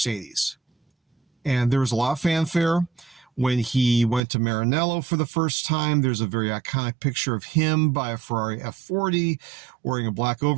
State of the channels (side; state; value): left; drops out; at 4.2 s